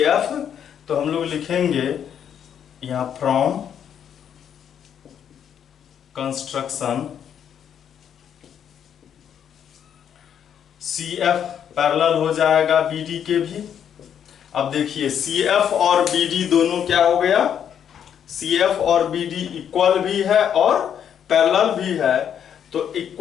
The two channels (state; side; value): quieter; right; 8.8 dB